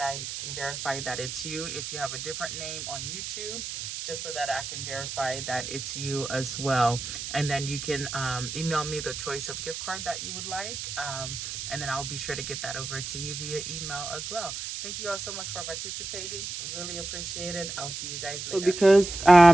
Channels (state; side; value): noise; right; hiss, 6 dB below the sound